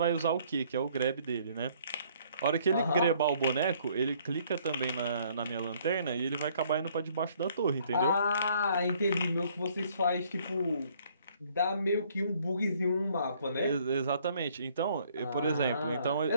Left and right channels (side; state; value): both; inverted; correlation -0.62